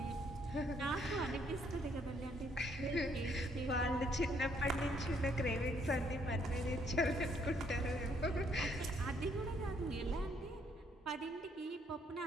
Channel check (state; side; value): normal; both; correlation 0.69